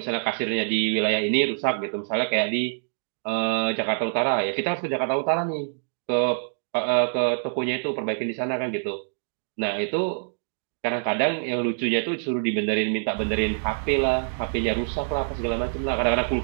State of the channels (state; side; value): silent; left; digital silence